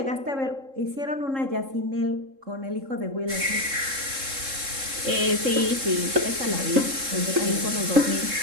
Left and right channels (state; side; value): late; left; 3.7 ms